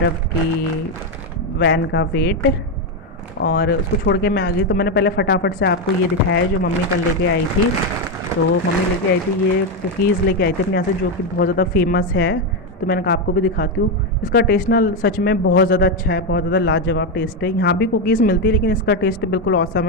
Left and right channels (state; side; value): normal; both; correlation 0.07